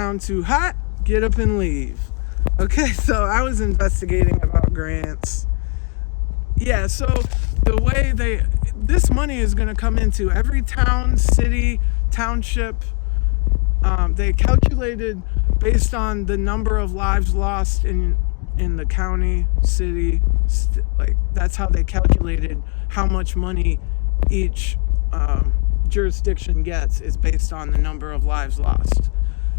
too hot, get up and leave. Okay, so I was investigating about grants. Yeah, so the way this money is going to come into every town, city, township. They calculated based on the number of lives lost in the county, city, like that's how they calculated how much money each jurisdiction gets is based on the number of lives lost.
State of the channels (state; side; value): quieter; right; 34.3 dB